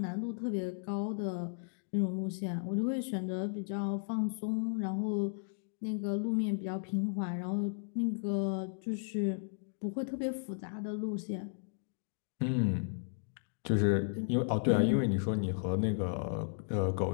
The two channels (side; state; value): right; silent; digital silence